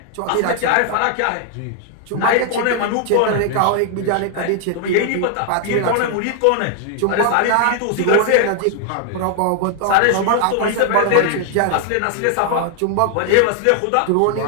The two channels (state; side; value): different; both; correlation 0.00